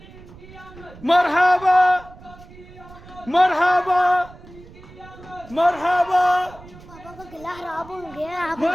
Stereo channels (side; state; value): right; noise; rumble, 20 dB below the sound